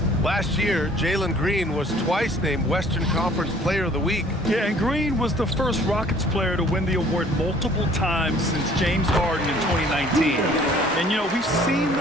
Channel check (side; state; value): both; normal; correlation 0.55